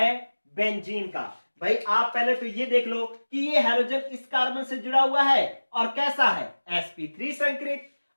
बेंजीन का। भाई आप पहले तो ये देख लो कि ये हैलोजन इस कार्बन से जुड़ा हुआ है और कैसा है? sp3 संकरित।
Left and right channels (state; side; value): inverted; both; correlation -1.00